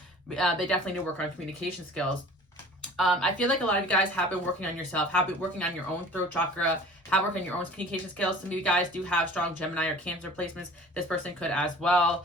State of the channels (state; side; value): normal; both; correlation 0.45